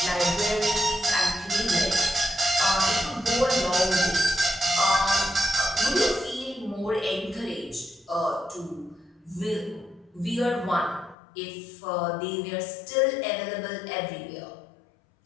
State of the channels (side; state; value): right; drops out; at 11.2 s